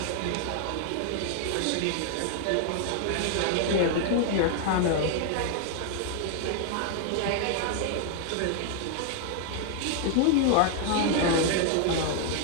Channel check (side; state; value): both; different; correlation 0.00